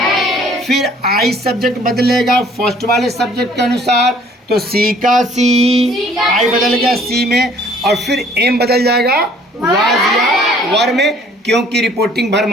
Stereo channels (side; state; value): both; normal; correlation 0.57